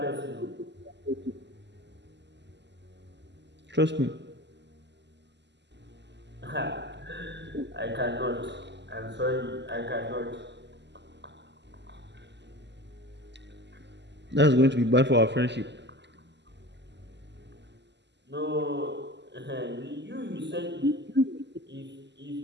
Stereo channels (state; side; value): late; left; 0.51 ms